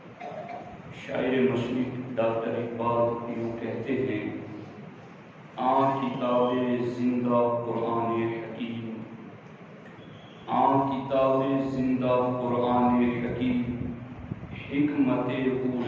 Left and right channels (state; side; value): identical; both; correlation 1.00